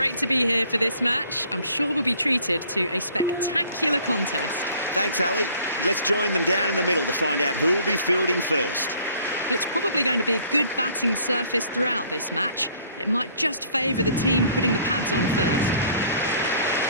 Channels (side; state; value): both; inverted; correlation -0.56